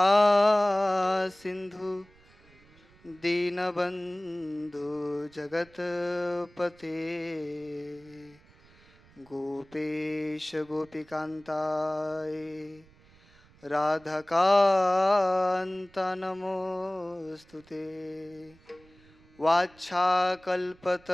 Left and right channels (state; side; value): noise; right; rumble, 28 dB below the sound